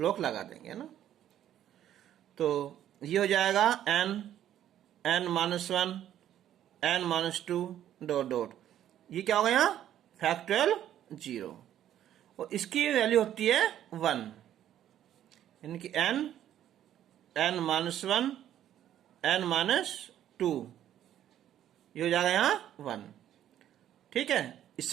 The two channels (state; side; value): quieter; left; 11.3 dB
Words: लगा देंगे ना। तो ये हो जाएगा n-1 n-2 डॉट डॉट, ये क्या होगा यहाँ फैक्टोरियल 0, और इसकी वैल्यू होती है 1, यानी कि n-1 n-2, ये हो जाएगा यहाँ 1। ठीक है,